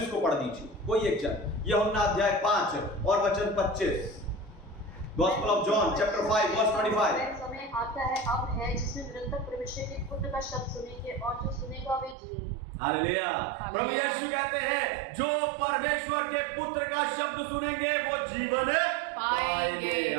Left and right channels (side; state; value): left; drops out; at 12.2 s